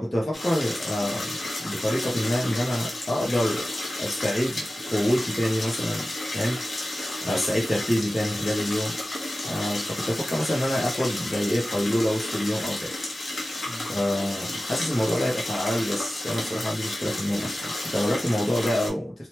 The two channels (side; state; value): both; normal; correlation 0.95